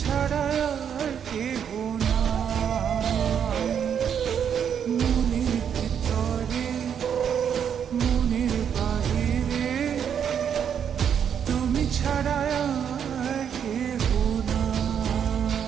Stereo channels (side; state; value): left; quieter; 8.2 dB